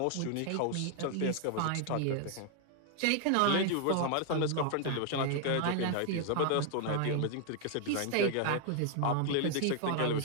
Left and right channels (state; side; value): different; both; correlation 0.00